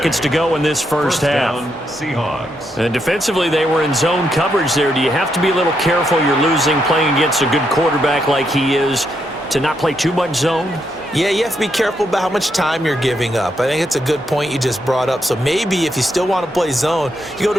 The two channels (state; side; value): normal; both; correlation 0.79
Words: to go in this first half. Seahawks. And defensively, they were in zone coverage there. Do you have to be a little careful? You're losing, playing against a good quarterback like he is, to not play too much zone? Yeah, you have to be careful about how much time you're giving up. I think it's a good point you just brought up. So maybe if you still want to play zone, you go